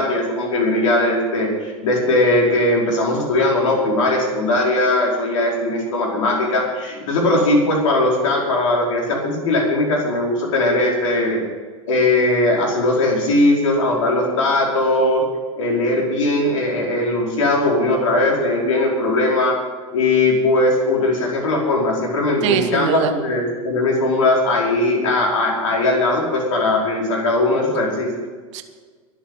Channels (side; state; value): both; normal; correlation 0.14